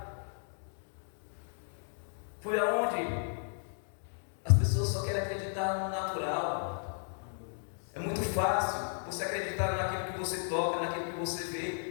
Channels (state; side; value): silent; right; digital silence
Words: Foi aonde? As pessoas só querem acreditar no natural. É muito fácil você acreditar naquilo que você toca, naquilo que você